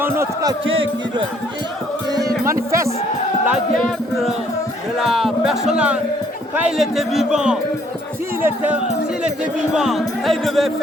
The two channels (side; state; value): both; normal; correlation 0.64